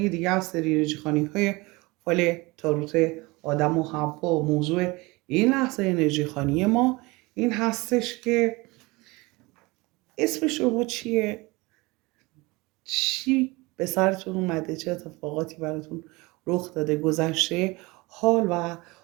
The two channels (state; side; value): quieter; left; 23.7 dB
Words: دیگه از سری انرژی خوانی های فال تاروت آدم و حوا. موضوع این لحظه انرژی خوانی ما این هستش که اسم شما چیه؟ چی به سرتون اومده؟ چه اتفاقاتی براتون رخ داده؟ گذشته، حال و